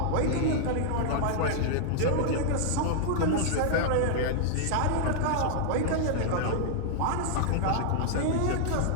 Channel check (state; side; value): different; both; correlation -0.01